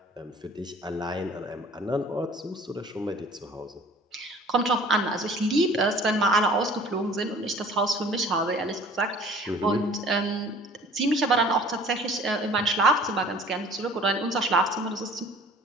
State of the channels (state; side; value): normal; both; correlation 0.49